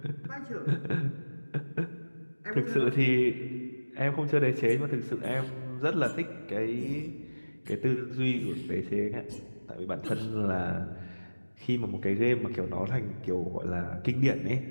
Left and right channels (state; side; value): inverted; both; correlation -1.00